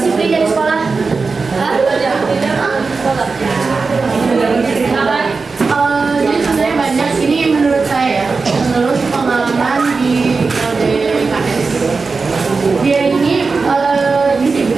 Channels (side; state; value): left; quieter; 4.4 dB